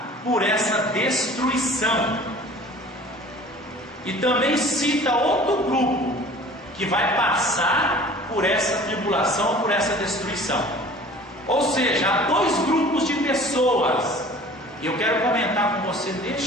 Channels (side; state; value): both; normal; correlation 0.46